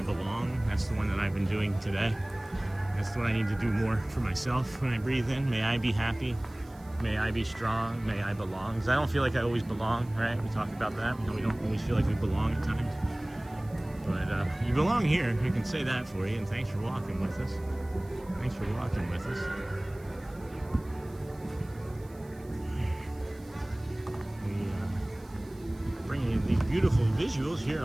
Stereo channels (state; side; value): noise; right; hiss, 27 dB below the sound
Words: belong. That's the one that I've been doing today. That's what I need to do more for myself when I breathe in. May I be happy. May I be strong. May I belong. Because I don't feel like I always belong, right? We talked about that. We don't always feel like we belong at times. But you belong here. We can say that for you. And thanks for walking with us. Thanks for walking with us. Bringing you these beautiful visuals here